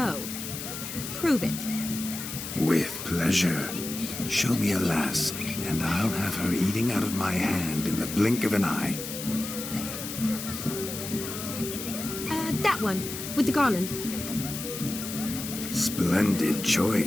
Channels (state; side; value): noise; left; hiss, 7 dB below the sound